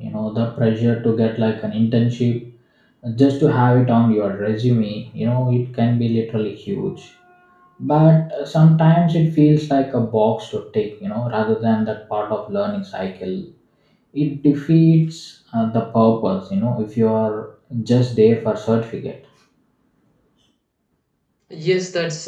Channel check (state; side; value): identical; both; correlation 1.00